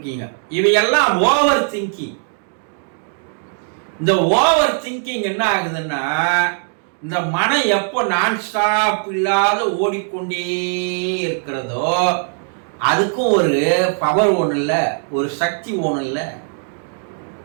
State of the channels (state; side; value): silent; left; 61 dB below the other